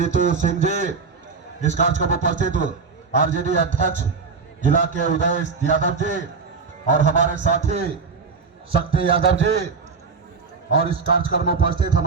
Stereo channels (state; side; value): quieter; left; 4.9 dB